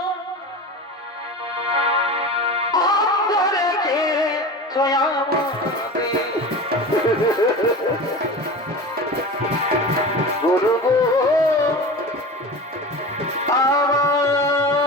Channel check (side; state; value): both; normal; correlation 0.31